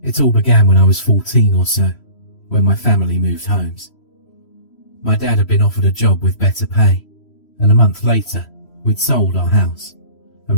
It all began when I was 14 or so, when my family moved homes. My dad had been offered a job with better pay, and a month later, we'd sold our house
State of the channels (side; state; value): right; late; 3.0 ms